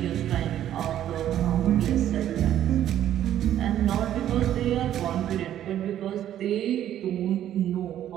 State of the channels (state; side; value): quieter; left; 11.4 dB